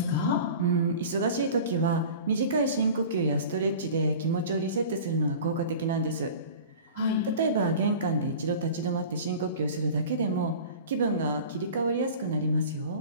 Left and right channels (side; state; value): both; inverted; correlation -0.39